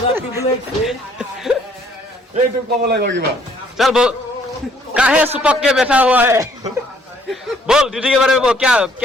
এইটো ক'ব লাগিব কিবা चल बोल काहे सुपक के बैठा हुआ है बोल ड्यूटी के बारे में बोल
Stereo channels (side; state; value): both; normal; correlation 0.63